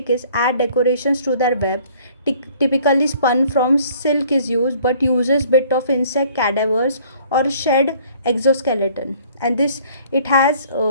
is add decorations to their web. Typically spun from silk is used, but uses bit of insect cadavers or shed exoskeleton. And this it has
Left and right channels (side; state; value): both; inverted; correlation -0.57